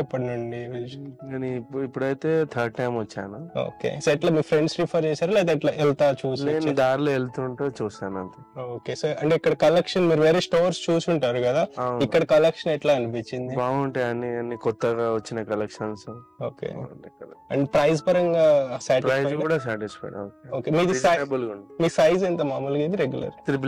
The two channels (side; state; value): both; identical; correlation 1.00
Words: ఎప్పటి నుండి? నేను ఇప్పుడైతే థర్డ్ టైం వచ్చాను. ఓకే. సో ఎట్లా మీ ఫ్రెండ్స్ రిఫర్ చేశారు లేదా ఎట్లా వెళ్తా చూసి? నేను దారిలో వెళ్తుంటే చూసాను అంతే. ఓకే. సో అంటే ఇక్కడ కలెక్షన్ మీరు వేరే స్టోర్స్ చూసి ఉంటారు కదా, ఇక్కడ కలెక్షన్ ఎట్లా అనిపించింది? బాగుంటాయి అన్ని కొత్తగా వచ్చిన కలెక్షన్స్. ఓకే. అండ్ ప్రైస్ పరంగా ప్రైస్ కూడా సాటిస్ఫైడ్. ఓకే. మీ సైజ్ ఎంత మామూలుగా? ఇది రెగ్యులర్